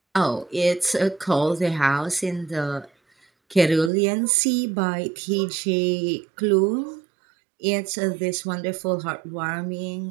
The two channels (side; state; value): left; drops out; at 3.9 s